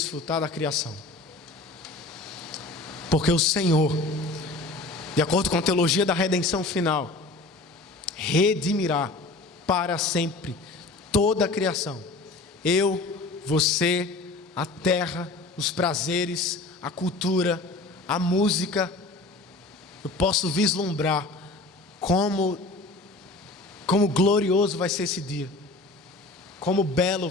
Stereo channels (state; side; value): quieter; right; 3.1 dB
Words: da criação. Porque o Senhor, de acordo com a teologia da redenção final, redimirá para sempre toda a criação. Eu, você, a terra, os prazeres, a cultura, a música. Eu posso vislumbrar como glorioso vai ser esse dia, como belo